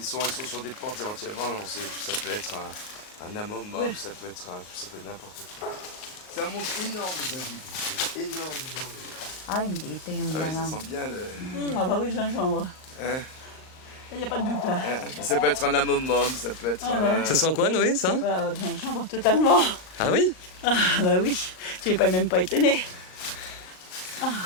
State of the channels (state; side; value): late; right; 38 ms